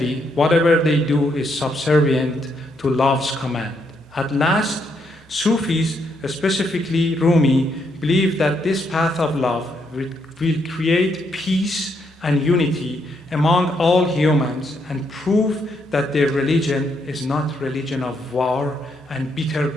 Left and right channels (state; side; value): normal; both; correlation 0.76